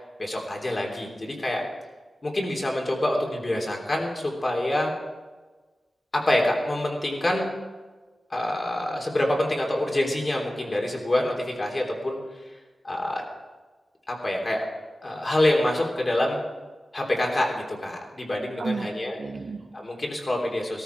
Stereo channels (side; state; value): both; normal; correlation 0.95